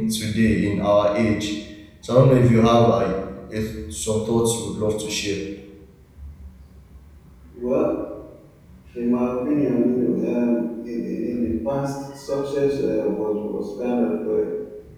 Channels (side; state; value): both; identical; correlation 1.00